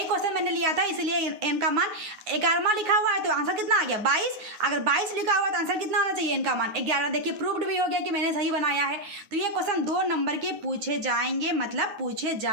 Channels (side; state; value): left; late; 9.4 ms